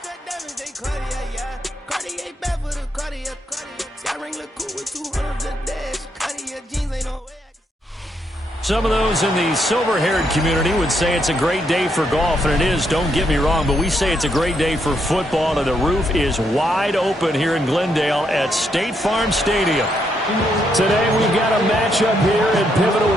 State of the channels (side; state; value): both; normal; correlation 0.77